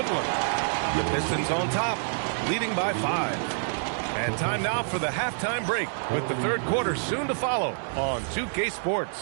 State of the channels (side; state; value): left; silent; digital silence